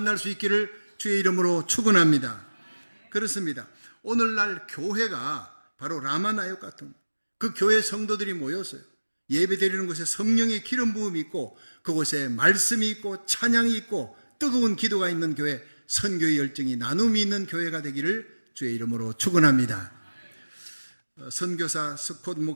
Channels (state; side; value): inverted; both; correlation -1.00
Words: 수 있기를 주의 이름으로 축원합니다. 그렇습니다. 오늘날 교회가 바로 라마나요 같은 그 교회 성도들이 모였어요. 예배 드리는 곳에 성령의 기름 부음이 있고 그곳에 말씀이 있고 찬양이 있고 뜨거운 기도가 있는 교회, 선교의 열정이 나눔이 있는 교회가 되기를 주의 이름으로 축원합니다. 선교사 스콧